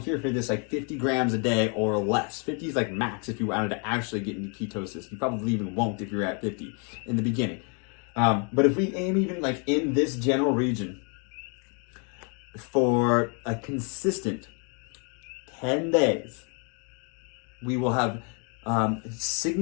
for this 50 grams a day or less. 50 is max if you wanted to actually get into ketosis. You probably even won't if you're at 50 in the beginning. But if we aim even in this general region for a consistent 10 days, we will have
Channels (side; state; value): right; quieter; 37.3 dB